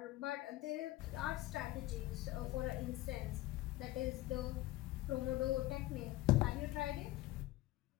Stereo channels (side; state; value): right; quieter; 17.3 dB